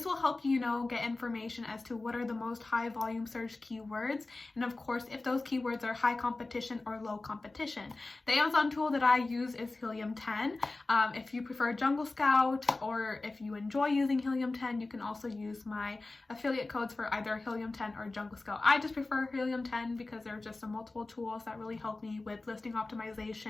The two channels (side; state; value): right; quieter; 3.2 dB